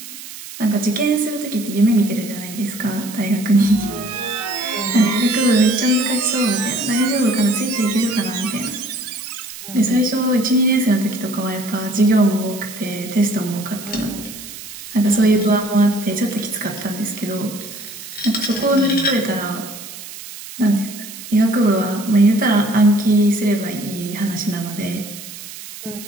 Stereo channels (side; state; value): right; noise; hiss, 13 dB below the sound